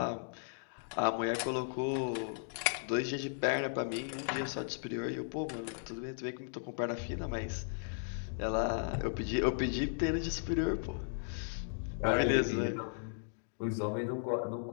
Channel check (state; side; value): silent; right; digital silence